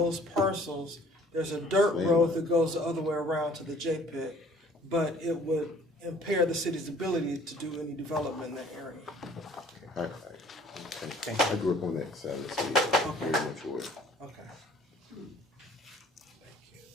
parcels. There's a dirt road that goes the other way around to the J-Pit, but it would impair the city's ability to do any development in that area. Okay. I grew up on that side of the city. Very much aware.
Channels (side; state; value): both; normal; correlation 0.54